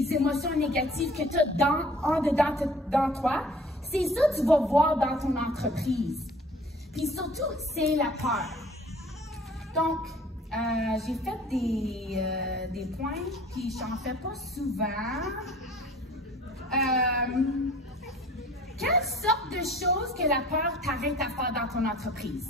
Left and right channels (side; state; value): both; normal; correlation 0.50